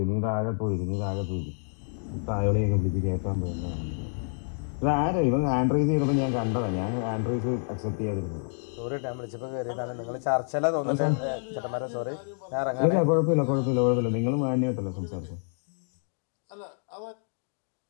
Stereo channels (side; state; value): right; silent; 59 dB below the other